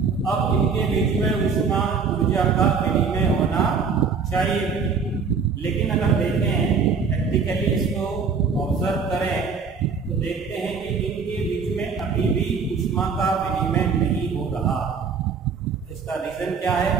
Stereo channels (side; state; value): left; quieter; 5.5 dB